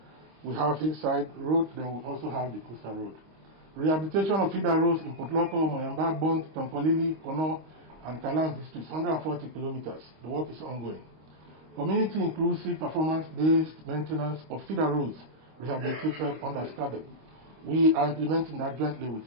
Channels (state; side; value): late; left; 25 ms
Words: we have hillside road, then we also have the coastal road. Rehabilitation of feeder roads in Potloko, Moyamba, Bond, Tonkolili, Kono, and Kalam districts, 140 kilometers. The work is ongoing. Community inclusive performance-based maintenance of feeder roads rehabilitated under SCADEP. We are implementing that jointly with